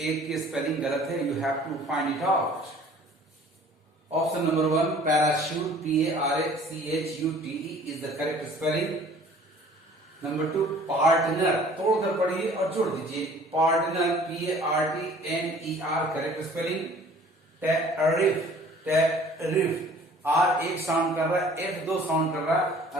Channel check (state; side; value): normal; both; correlation 0.51